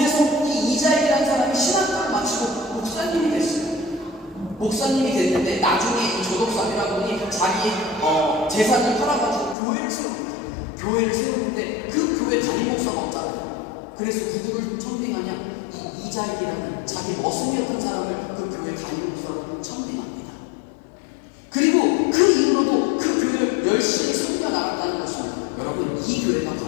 이 이자익이라는 사람이 신학교를 마치고 목사님이 됐어요. 목사님이 됐는데 나중에 이 조덕삼이라는 분이 자기 재산을 팔아가지고 교회를 세웁니다. 교회를 세우는데 그 교회 담임 목사가 없잖아요. 그래서 누구를 청빙하냐? 이 이자익이라는 자기 머슴이었던 사람을 그 교회 담임 목사로 청빙합니다. 그리고 그 이후로도 그 교회를 열심히 섬겨나갔다는 것입니다. 여러분 이 교회가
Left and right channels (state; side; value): drops out; right; at 9.6 s